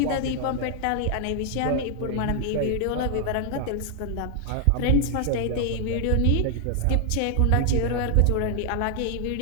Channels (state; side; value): different; both; correlation 0.00